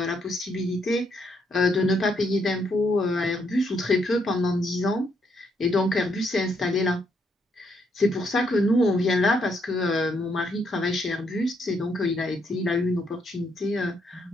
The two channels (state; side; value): normal; both; correlation 0.75